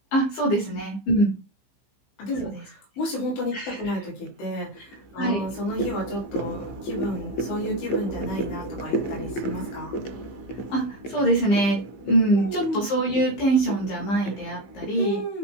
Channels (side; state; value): right; late; 15 ms